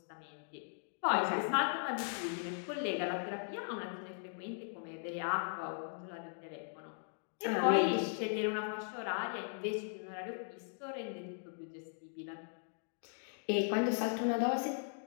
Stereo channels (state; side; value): silent; right; digital silence